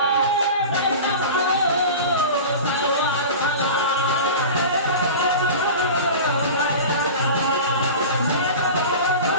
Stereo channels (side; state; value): both; inverted; correlation -0.32